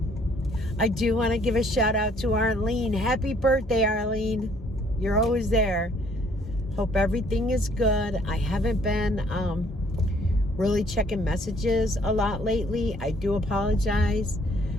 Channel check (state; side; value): normal; both; correlation 0.62